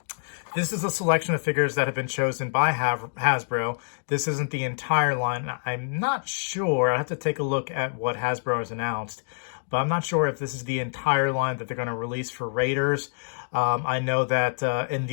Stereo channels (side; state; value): right; silent; digital silence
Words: this is a selection of figures that have been chosen by Hasbro. This isn't the entire line. I'm not sure. I have to take a look at what Hasbro has announced, but I'm not sure if this is the entire line that they're going to release for Raiders. I know that in